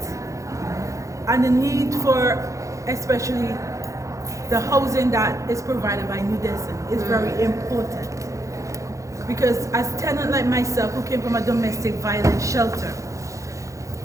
and the need for especially the housing that is provided by New Destiny is very important, because as a tenant like myself who came from a domestic violence shelter,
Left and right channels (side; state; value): left; late; 0.15 ms